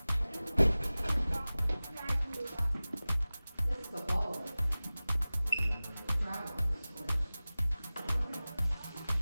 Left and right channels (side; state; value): both; inverted; correlation -0.98